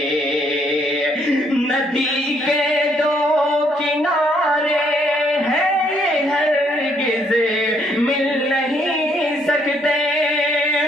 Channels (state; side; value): normal; both; correlation 0.69